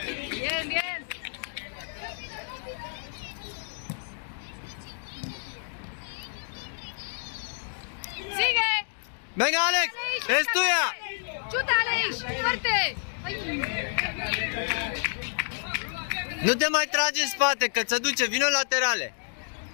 Bien, bien. ¡Sigue! Venga, Alex, es tuya. ¡Chuta, Aleix! ¡Fuerte! Ay. Nu te mai tragi în spate, că ți duce, vino laterale.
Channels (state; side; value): silent; right; digital silence